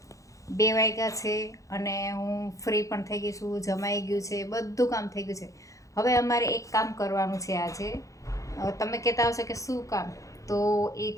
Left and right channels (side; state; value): right; late; 0.16 ms